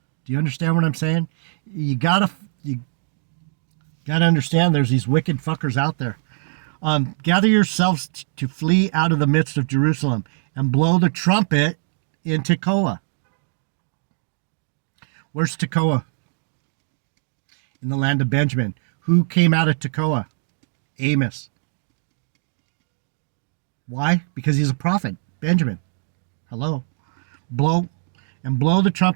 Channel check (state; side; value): silent; left; digital silence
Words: Do you understand what I'm saying? You gotta understand there's these wicked fuckers out there. Gather yourselves to flee out of the midst of Jerusalem and blow the trumpet in Tekoa. Where's Tekoa? In the land of Benjamin. Who came out of Tekoa? Amos. Why? Because he's a prophet. Benjamin. Hello. Blow the